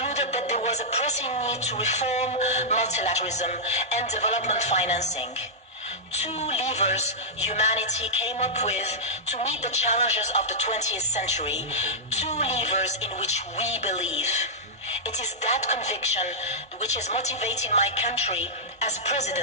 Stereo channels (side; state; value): both; normal; correlation -0.10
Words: that there was a pressing need to reform multilateralism and development financing. Two levers humanity came up with to meet the challenges of the 20th century, two levers in which we believe. It is that conviction which is motivating my country as